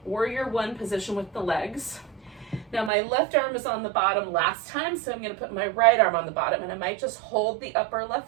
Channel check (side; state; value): left; drops out; at 2.9 s